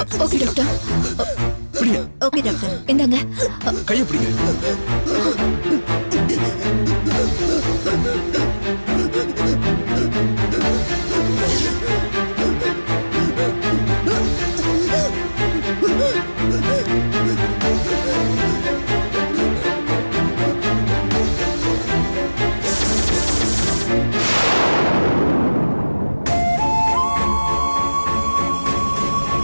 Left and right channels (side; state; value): both; inverted; correlation -1.00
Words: Okay doctor. பிடிங்க. Okay doctor. இந்தாங்க. கையை பிடிங்க.